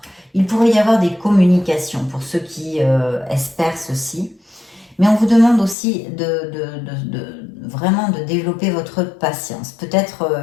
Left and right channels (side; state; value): right; drops out; at 5.8 s